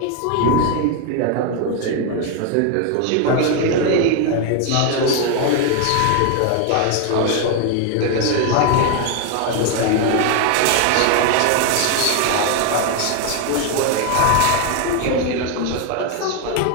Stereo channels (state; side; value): different; both; correlation 0.01